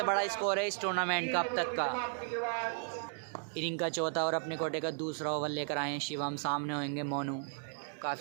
बड़ा स्कोर है इस टूर्नामेंट का अब तक का। इनिंग का चौथा और अपने कोटे का दूसरा ओवर लेकर आए हैं शिवम। सामने होंगे मोनू।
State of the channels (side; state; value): left; silent; 54 dB below the other